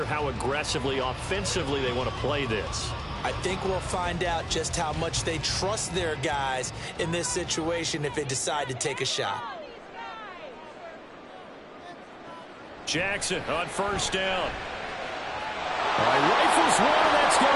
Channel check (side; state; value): both; identical; correlation 1.00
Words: how aggressively, offensively they want to play this. I think we'll find out just how much they trust their guys in this situation if they decide to take a shot. Jackson on first down. Rifles one, that's going